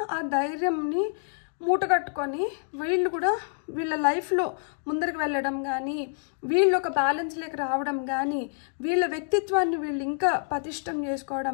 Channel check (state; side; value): silent; right; digital silence